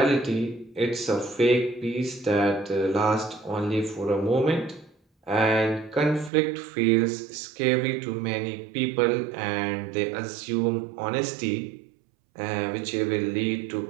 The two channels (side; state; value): left; drops out; at 6.3 s